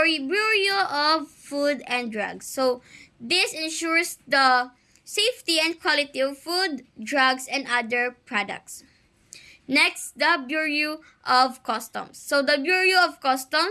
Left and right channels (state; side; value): identical; both; correlation 1.00